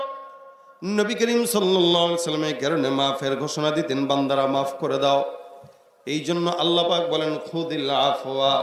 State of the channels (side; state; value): both; identical; correlation 1.00